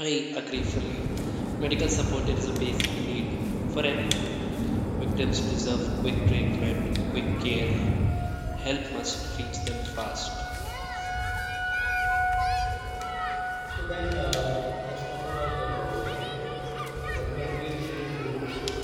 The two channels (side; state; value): both; identical; correlation 1.00